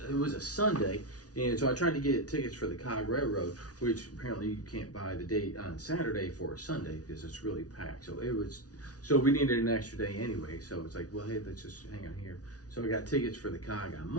a Sunday. And so I tried to get tickets for the Cog Railroad, which apparently you can't buy the date on Saturday for a Sunday because it's really packed. So we needed an extra day anyway. So it's like, well, hey, let's just hang on here. So I got tickets for the Cog on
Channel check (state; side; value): late; right; 0.68 ms